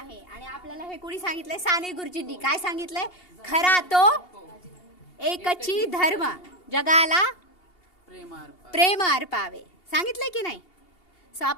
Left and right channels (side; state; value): right; late; 2.8 ms